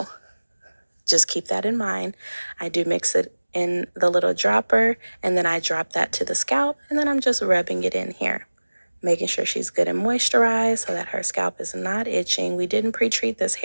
just keep that in mind. I do mix it in the little dropper, and then I drop that to the scalp, and then I'm just rubbing it in here, making sure she's good and moisturized so that her scalp is not itching. We didn't pre-treat this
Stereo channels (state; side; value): inverted; both; correlation -1.00